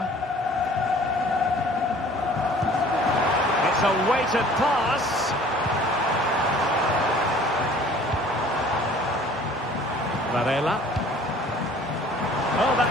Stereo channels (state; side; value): normal; both; correlation 0.51